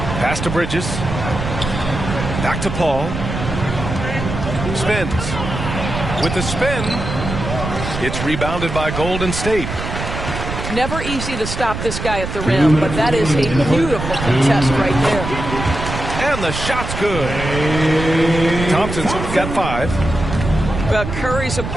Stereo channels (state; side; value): noise; right; rumble, 5 dB below the sound